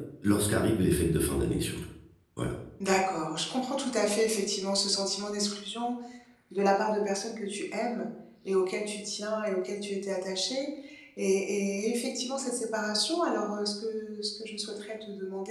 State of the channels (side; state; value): both; identical; correlation 1.00